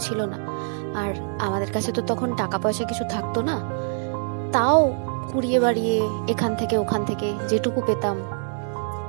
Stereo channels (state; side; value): silent; left; digital silence